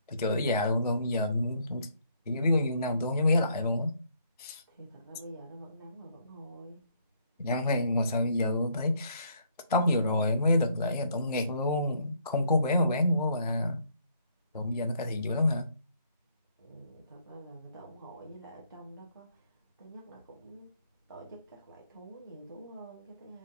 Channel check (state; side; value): inverted; both; correlation -0.68